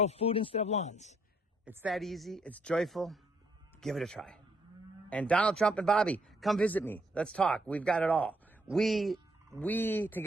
food instead of lawns. It's that easy. It's joyful. Give it a try. And Donald Trump and Bobby, come visit me. Let's talk. We've got it all. We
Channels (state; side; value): normal; both; correlation 0.71